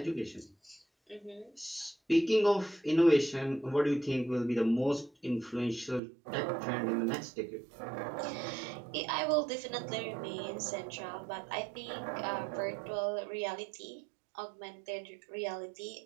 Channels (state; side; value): drops out; left; at 6.0 s